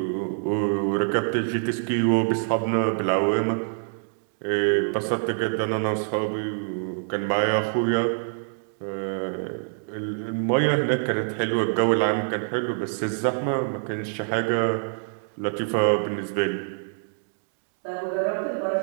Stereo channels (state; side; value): silent; left; digital silence